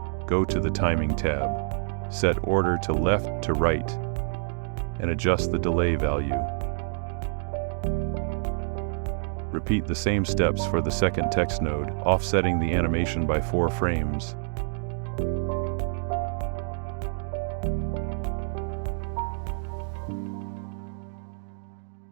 Go to the Timing tab. Set order to left to right and adjust the delay value. Repeat the same steps for the second text node, offsetting the animation by 4 frames.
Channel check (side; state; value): left; silent; 60 dB below the other